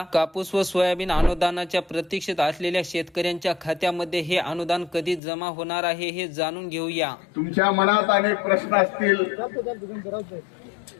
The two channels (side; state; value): right; drops out; at 5.2 s